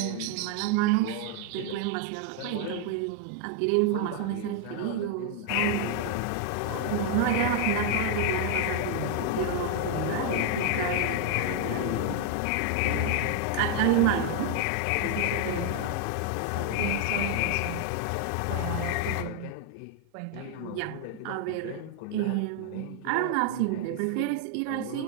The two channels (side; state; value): both; different; correlation 0.00